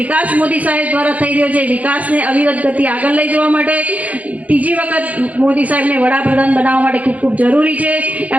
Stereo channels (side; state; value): left; late; 0.072 ms